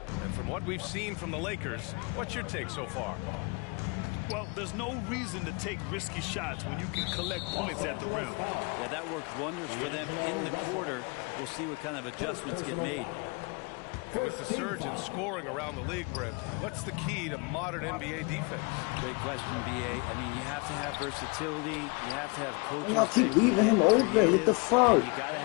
And from what we've seen from the Lakers, what's your take so far? Well, there's no reason to take risky shots when you can collect points at the rim. Yeah, that worked wonders for them in the quarter. We'll see what kind of adjustments get made. With the surge in scoring around the league, Brent, what's the key to modern NBA defense? Great question, B.A. I mean, you have to have versatility. You have to have coaches. Y'all keep leaving him open. What the fuck? You got to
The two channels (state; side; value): quieter; right; 30.6 dB